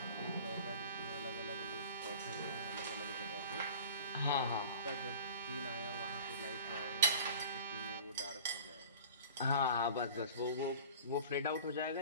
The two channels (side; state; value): both; inverted; correlation -0.43